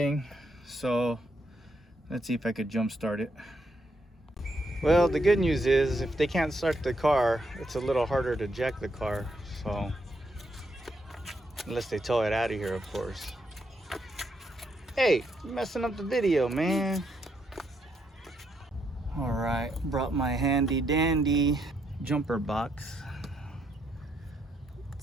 so let's see if I could jump start it. Well, the good news is if they can't start the car, it's a little harder to jack the car. So, unless they tow it out of here, of course. Hey, you're messing up the video, man. All right, brought my handy dandy jumper box.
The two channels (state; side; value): normal; both; correlation 0.77